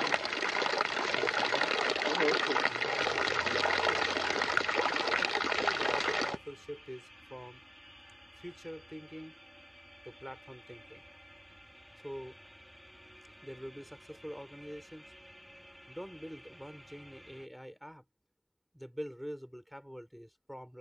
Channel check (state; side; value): identical; both; correlation 1.00